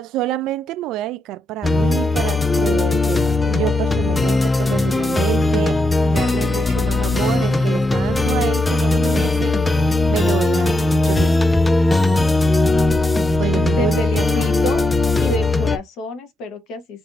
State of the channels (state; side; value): normal; both; correlation 0.84